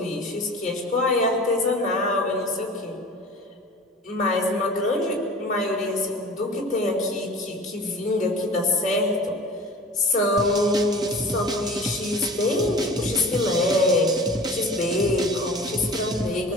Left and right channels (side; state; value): both; normal; correlation 0.40